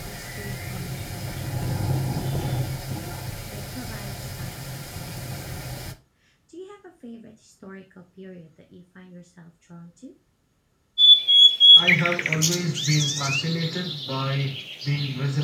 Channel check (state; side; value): identical; both; correlation 1.00